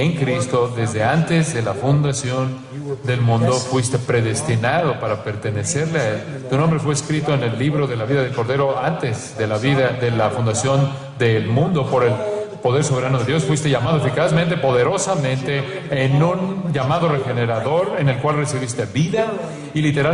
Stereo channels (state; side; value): identical; both; correlation 1.00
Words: Cristo desde antes de la fundación del mundo. Fuiste predestinado para pertenecerle a Él. Tu nombre fue escrito en el libro de la vida del Cordero antes de la fundación del mundo por el poder soberano de Dios. Fuiste llamado eficazmente, poderosamente, en un llamado regenerador en el cual recibiste vida y